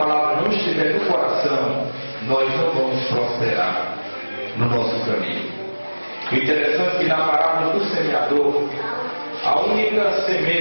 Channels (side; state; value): both; inverted; correlation -1.00